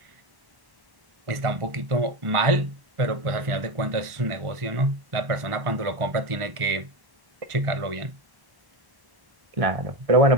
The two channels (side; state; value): left; late; 1.1 ms